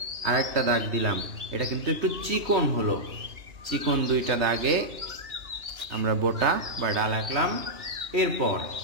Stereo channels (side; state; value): left; late; 2.9 ms